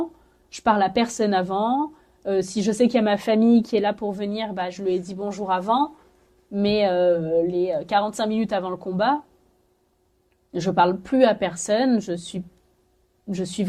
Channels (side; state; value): both; identical; correlation 1.00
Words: Je parle à personne avant. Si je sais qu'il y a ma famille qui est là pour venir, bah, je lui ai dit bonjour avant. Mais les 45 minutes avant le combat, je parle plus à personne. Je suis